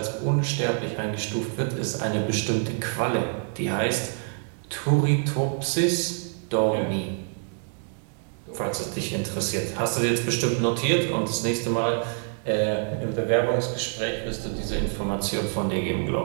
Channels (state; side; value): silent; left; 55 dB below the other